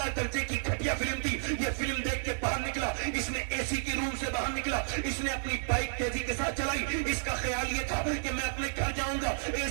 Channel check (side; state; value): left; silent; 57 dB below the other